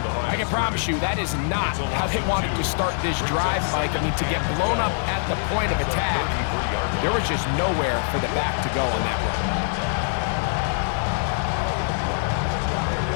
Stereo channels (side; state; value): right; silent; digital silence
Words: I can promise you that is not how they wanted to start this drive, Mike. I mean, to get blown up at the point of attack, there was just nowhere for the back to go on that run.